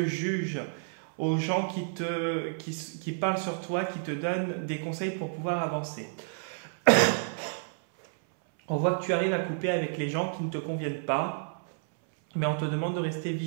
jugent, aux gens qui parlent sur toi, qui te donnent des conseils pour pouvoir avancer. On voit que tu arrives à couper avec les gens qui ne te conviennent pas, mais on te demande de rester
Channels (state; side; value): silent; left; 57 dB below the other